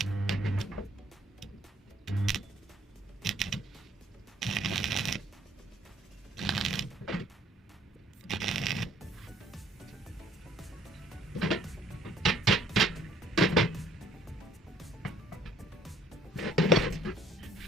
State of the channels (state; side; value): normal; both; correlation 0.60